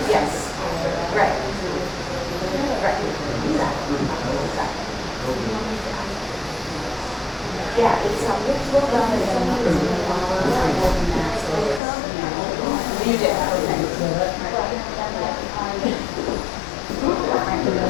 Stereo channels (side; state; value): right; drops out; at 11.8 s